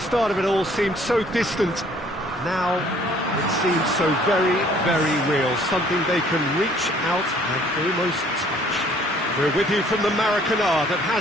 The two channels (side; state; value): both; normal; correlation 0.58